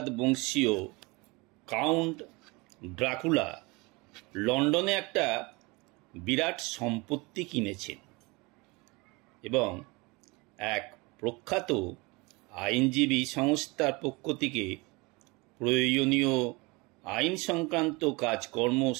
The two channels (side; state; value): left; quieter; 25.7 dB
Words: বংশীয় কাউন্ট ড্রাকুলা লন্ডনে একটা বিরাট সম্পত্তি কিনেছেন এবং এক প্রখ্যাত আইনজীবী সংস্থার পক্ষ থেকে প্রয়োজনীয় আইন সংক্রান্ত কাজকর্ম